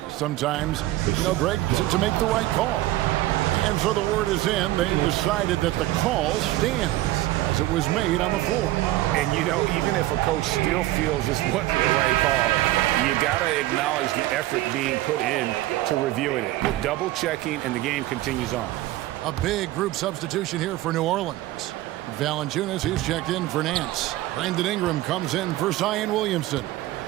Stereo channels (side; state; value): left; quieter; 16.4 dB